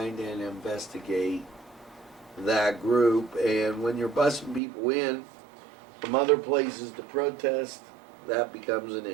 and investigate that group. And when you're busing people in from other places to protest, that becomes an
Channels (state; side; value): drops out; left; at 4.6 s